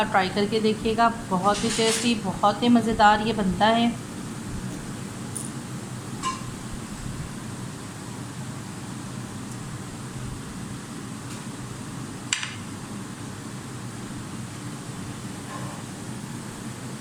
ट्राई करके देखिएगा, बहुत ही टेस्टी, बहुत ही मज़ेदार ये बनता है।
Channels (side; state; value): both; identical; correlation 1.00